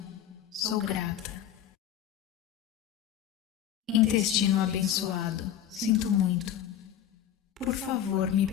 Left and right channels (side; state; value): right; quieter; 10.3 dB